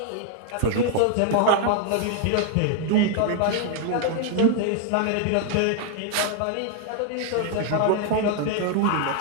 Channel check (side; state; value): both; different; correlation 0.00